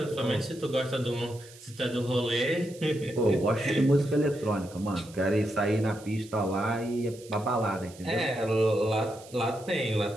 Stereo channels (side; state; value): right; noise; hiss, 21 dB below the sound